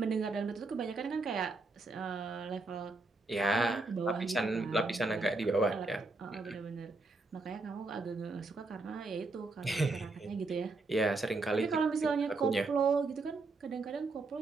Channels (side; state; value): left; quieter; 3.5 dB